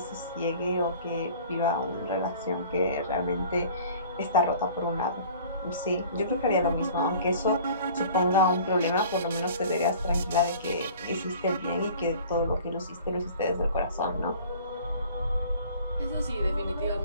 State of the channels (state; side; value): inverted; both; correlation -0.47